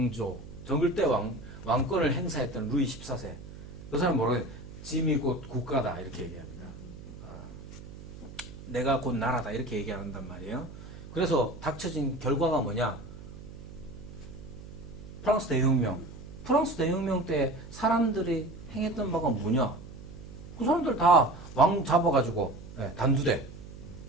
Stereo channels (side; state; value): right; noise; hum, 14 dB below the sound